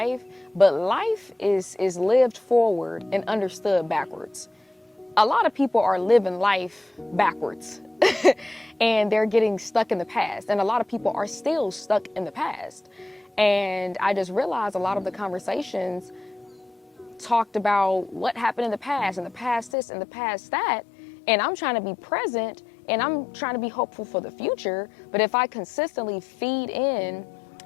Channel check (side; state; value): right; drops out; at 19.7 s